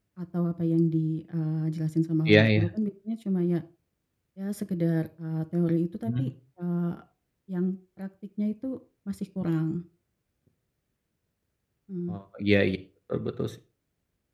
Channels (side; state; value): both; identical; correlation 1.00